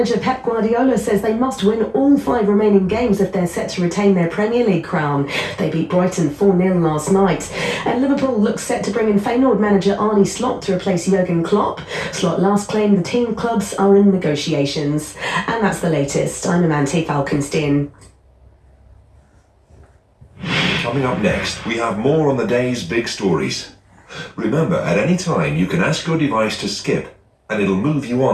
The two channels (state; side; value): identical; both; correlation 1.00